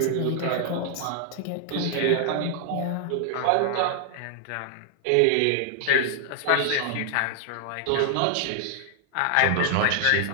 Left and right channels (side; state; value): both; different; correlation 0.00